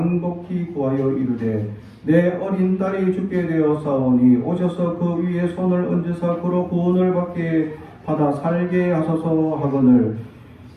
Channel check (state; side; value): identical; both; correlation 1.00